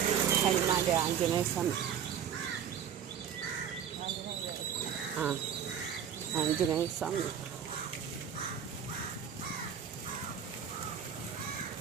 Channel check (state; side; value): quieter; left; 8.3 dB